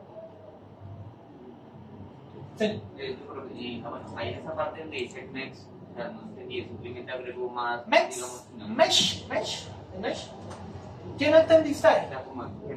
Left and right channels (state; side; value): identical; both; correlation 1.00